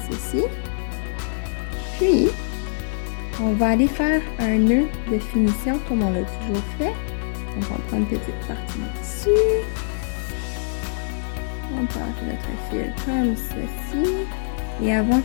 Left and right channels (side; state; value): right; silent; digital silence